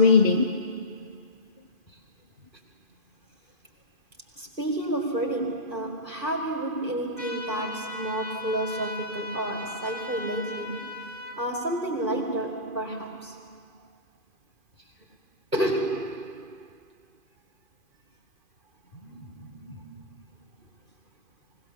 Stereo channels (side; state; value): left; late; 2.5 ms